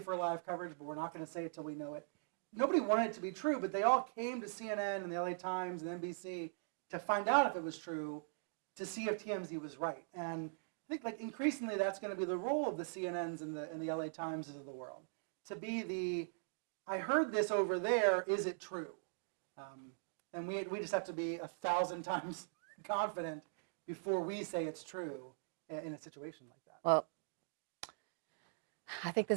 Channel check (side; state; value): left; silent; digital silence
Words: live coverage, but we're not going to say it till we know it. Nobody wanted it to be true, but they all came to CNN and the LA Times and NBC to find out if it was true, to see if TMZ was right. And I think increasingly that's going to be the role of the CNNs and the LA Times of the world, to be I heard this over there, is it true? And we just have to be 1,000 times confident before we say it's true in a situation like that. Well, I think